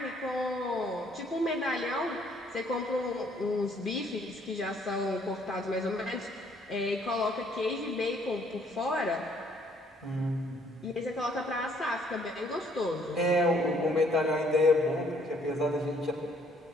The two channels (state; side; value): normal; both; correlation 0.64